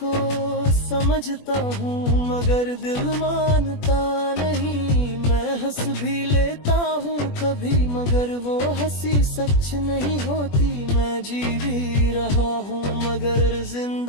समझता हूँ मगर दिल मानता नहीं। मैं हंस भी लेता हूँ कभी, मगर वो हंसी सच नहीं होती। मैं जी भी रहा हूँ मगर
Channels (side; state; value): right; late; 21 ms